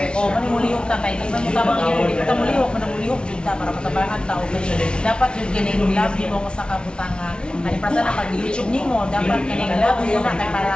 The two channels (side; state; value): right; late; 0.056 ms